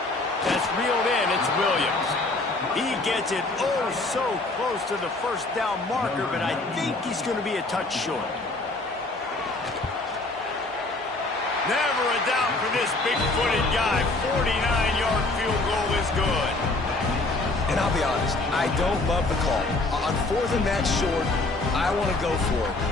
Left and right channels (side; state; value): right; quieter; 3.1 dB